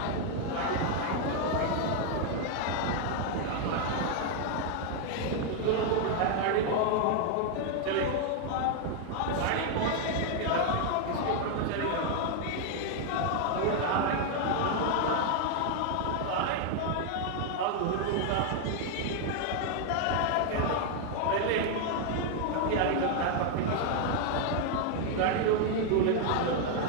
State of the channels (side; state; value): both; different; correlation 0.00